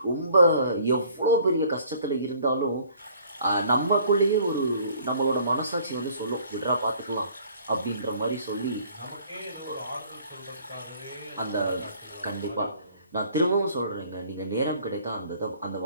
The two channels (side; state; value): both; inverted; correlation -0.56